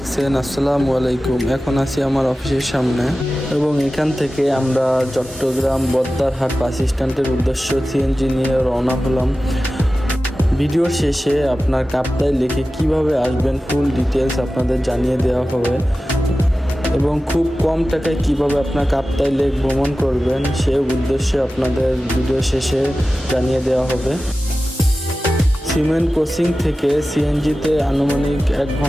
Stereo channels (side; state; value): both; normal; correlation 0.95